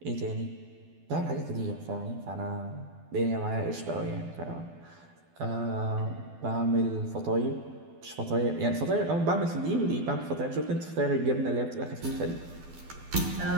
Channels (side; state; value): left; late; 12 ms